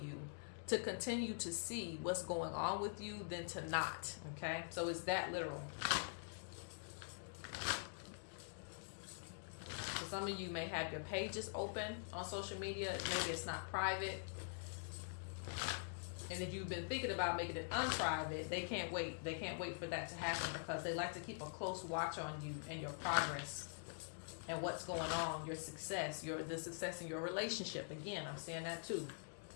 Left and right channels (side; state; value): right; silent; digital silence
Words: to continue to see what's going on with you than to not. Okay? So it's that literal. So some of you may have your pages open on social media. Maybe it's not private. And if you've been thinking about making it unprivate, they can't wait. They can't wait for that to happen because they like to keep a close watch on you and your progress and what's going on, your success, the success in your relationship. Again, I'm seeing that too.